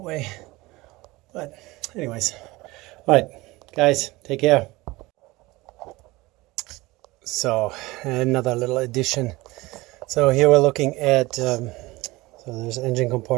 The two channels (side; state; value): left; quieter; 21.0 dB